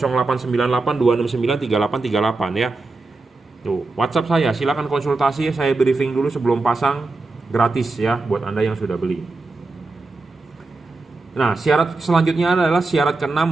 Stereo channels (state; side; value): quieter; left; 3.5 dB